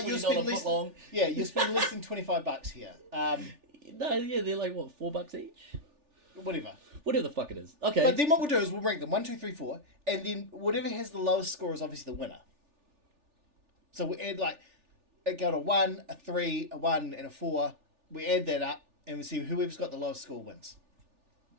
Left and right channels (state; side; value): late; left; 3.4 ms